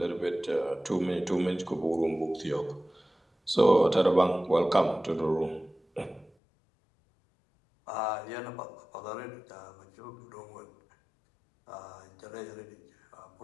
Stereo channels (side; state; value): right; drops out; at 6.3 s